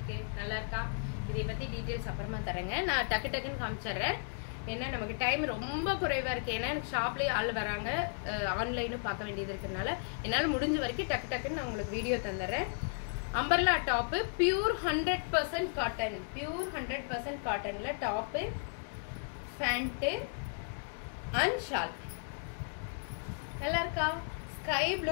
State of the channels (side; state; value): right; silent; digital silence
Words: நல்லா இருக்கா? இதை பத்தி டீடைல்ஸ் அப்புறமா தரேங்க. நான் டக்குன்னு காமிச்சறேன். என்ன நமக்கு டைம் ரொம்ப குறைவா இருக்கு. ஏன்னா எனக்கு ஷாப்லயே ஆள் வராங்க. ஆன்லைனும் பார்க்க வேண்டியது இருக்கனால என்னால முடிஞ்ச வரைக்கும் டக்குன்னு நான் உங்களுக்கு வீடியோ தந்தறேன். Umbrella top pure 100% cotton. Pure 100% காட்டன்ல டாப், பேண்ட் அண்ட் ஷால். நல்லா இருக்கா? ஸ்கை